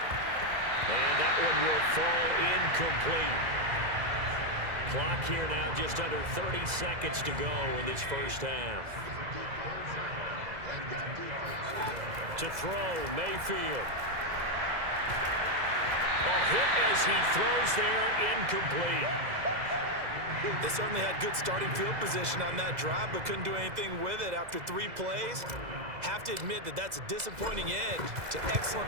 And that one will fall incomplete. Clock here now just under 30 seconds to go in this 1st half. To throw, Mayfield. Hit as he throws there, incomplete. They certainly had good starting field position on that drive, but couldn't do anything with it after 3 plays. Have to admit that that's a disappointing end to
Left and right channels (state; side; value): late; left; 2.0 ms